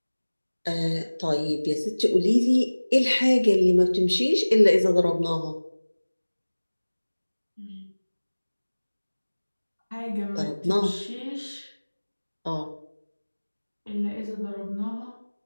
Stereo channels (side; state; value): both; inverted; correlation -1.00